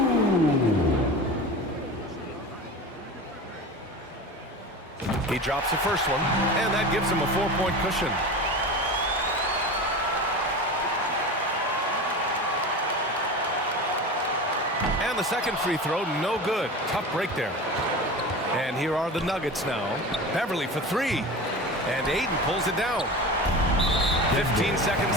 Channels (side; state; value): both; normal; correlation 0.31